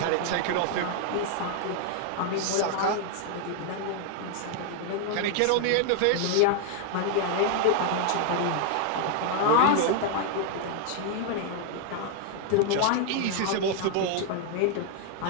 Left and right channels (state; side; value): different; both; correlation 0.00